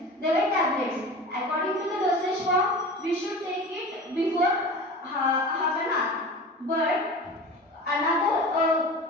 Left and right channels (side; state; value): both; normal; correlation 0.35